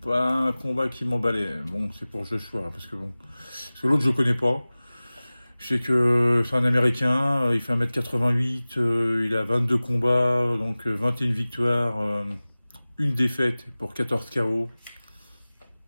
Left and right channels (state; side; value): inverted; both; correlation -0.98